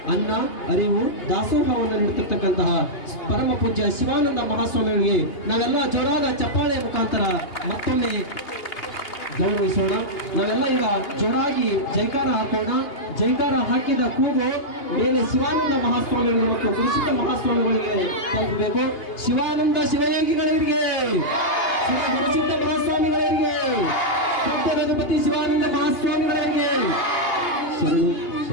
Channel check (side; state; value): right; late; 2.8 ms